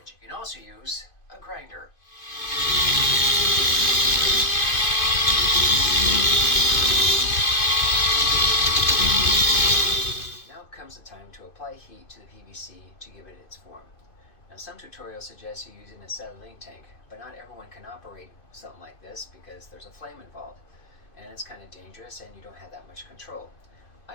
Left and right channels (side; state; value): right; late; 2.5 ms